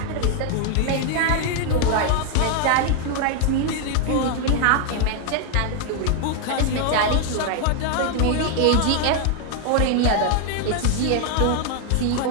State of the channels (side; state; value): both; different; correlation 0.00